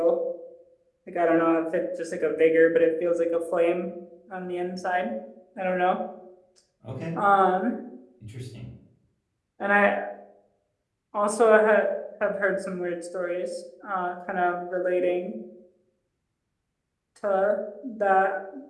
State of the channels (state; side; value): identical; both; correlation 1.00